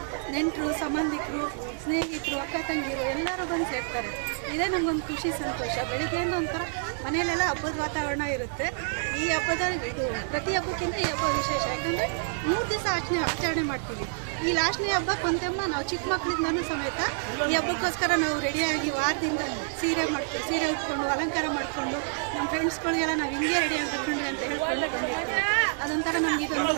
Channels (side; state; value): left; silent; digital silence